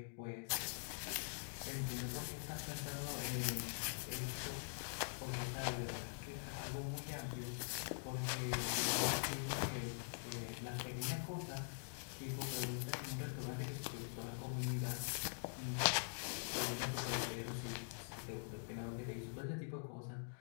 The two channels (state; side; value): silent; right; digital silence